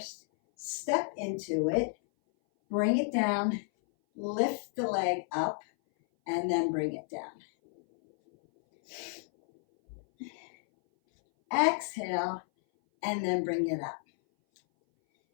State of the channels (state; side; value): silent; right; 57 dB below the other